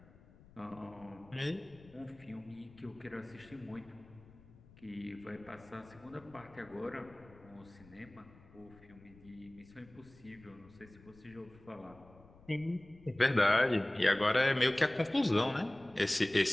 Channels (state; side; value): noise; left; rumble, 23 dB below the sound